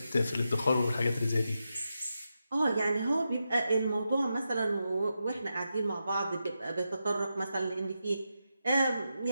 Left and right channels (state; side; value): inverted; both; correlation -0.88